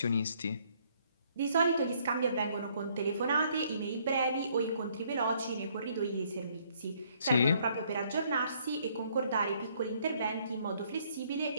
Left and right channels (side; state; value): both; inverted; correlation -0.66